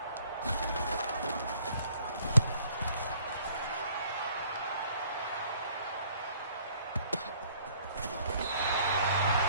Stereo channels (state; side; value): inverted; both; correlation -0.59